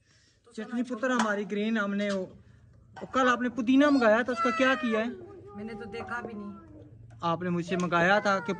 तो चटनी पुत्र हमारी ग्रीन, हमने वो कल आपने पुदीना मंगाया था, उसका क्या किया है? मैंने तो देखा भी नहीं। आपने मुझसे मंगाया था कि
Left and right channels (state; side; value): identical; both; correlation 1.00